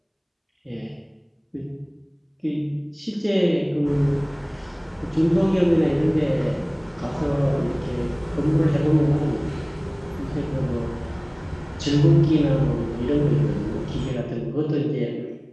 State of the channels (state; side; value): identical; both; correlation 1.00